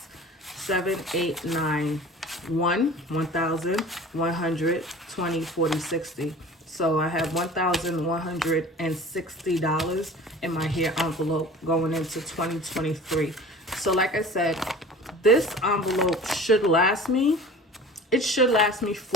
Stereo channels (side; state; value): both; normal; correlation 0.42